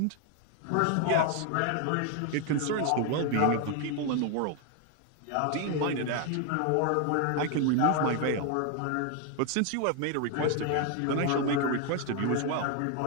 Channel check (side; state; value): both; different; correlation 0.01